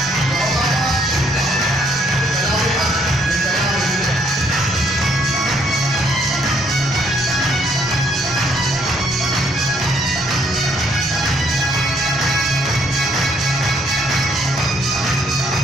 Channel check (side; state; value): both; normal; correlation 0.68